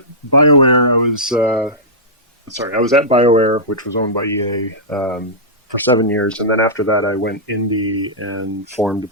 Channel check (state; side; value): normal; both; correlation -0.14